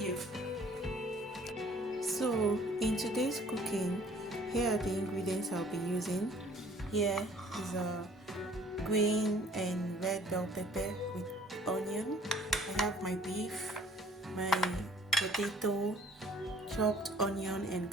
So in today's cooking, here are the ingredients I'll be using. Here is a green and red bell pepper with onion. I have my beef, my potato, chopped onion and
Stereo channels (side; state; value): both; normal; correlation 0.56